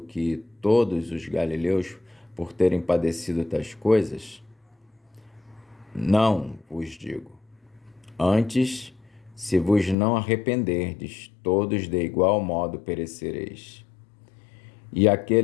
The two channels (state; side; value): drops out; right; at 10.0 s